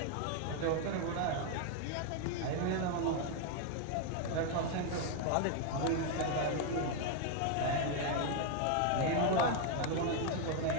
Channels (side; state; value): both; different; correlation 0.01